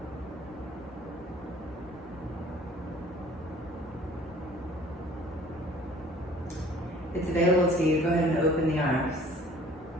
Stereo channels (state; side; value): normal; both; correlation 0.51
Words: If it's available to you, go ahead and open the arms.